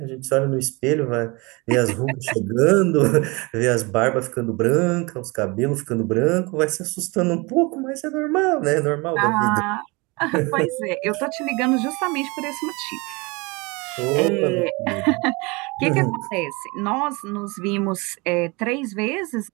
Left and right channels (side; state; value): left; quieter; 26.6 dB